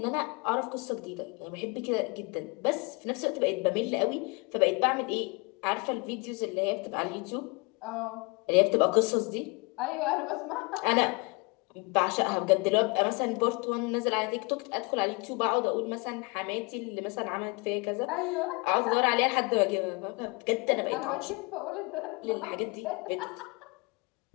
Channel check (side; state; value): right; quieter; 29.4 dB